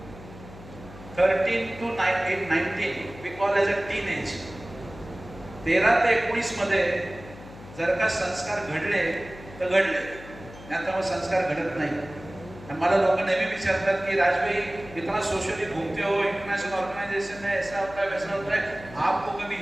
13 to 19 we call as a teenage. 13 ते 19 मध्ये जर का संस्कार घडले तर घडले, नाहीतर मग संस्कार घडत नाही. आणि मला लोक नेहमी विचारतात की राजभाई इतना सोशली घूमते हो, इंटरनेशनल ऑर्गेनाइजेशन में ऐसा होता है वैसा होता है, आपको कभी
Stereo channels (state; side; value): noise; left; hum, 17 dB below the sound